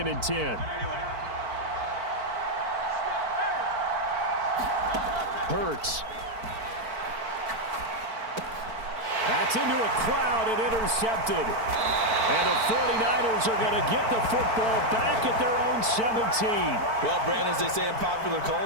and 10. Hurts. That's into a crowd and intercepted. And the 49ers are going to get the football back at their own 17. Well, Brandon, as they say in popular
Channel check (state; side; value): late; left; 4.5 ms